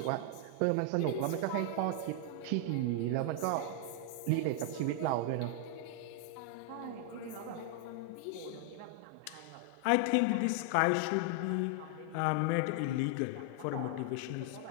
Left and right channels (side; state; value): both; different; correlation 0.00